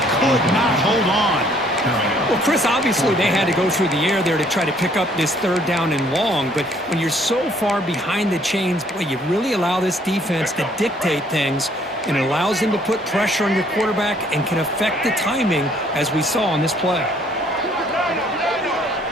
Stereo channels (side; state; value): both; normal; correlation 0.62